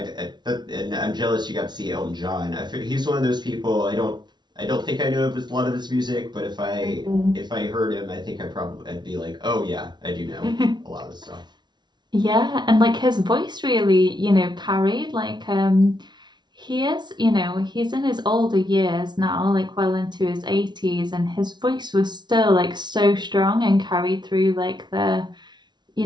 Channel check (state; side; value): late; left; 0.21 ms